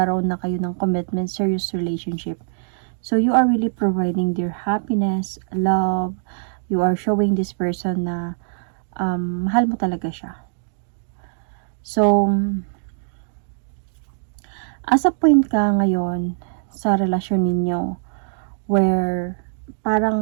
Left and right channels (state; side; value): silent; left; digital silence